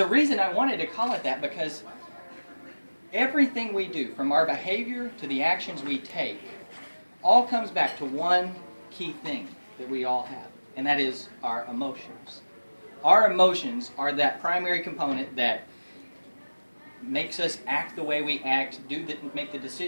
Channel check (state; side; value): inverted; both; correlation -1.00